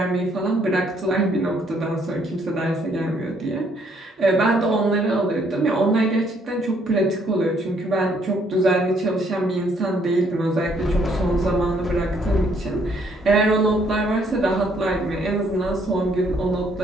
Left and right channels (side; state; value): both; normal; correlation 0.67